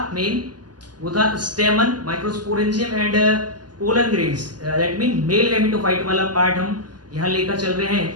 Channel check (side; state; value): left; late; 0.70 ms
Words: मेन वो था स्टेमन, microsporangium and pollen grains, that mean male gametophyte वाला पार्ट हम यहाँ लेकर चल रहे